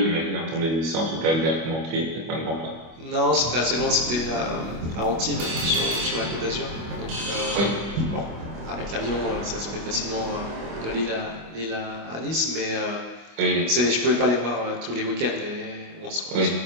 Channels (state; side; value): late; left; 25 ms